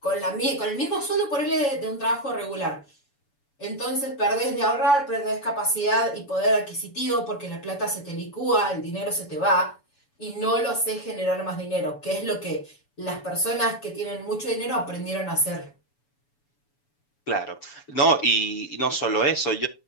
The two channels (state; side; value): late; right; 7.0 ms